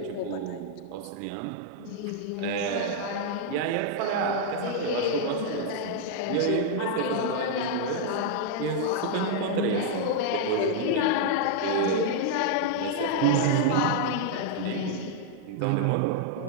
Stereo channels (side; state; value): both; different; correlation 0.00